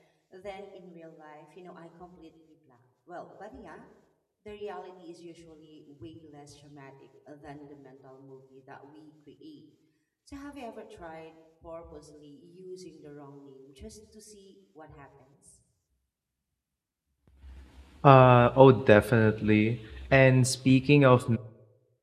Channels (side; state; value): both; identical; correlation 1.00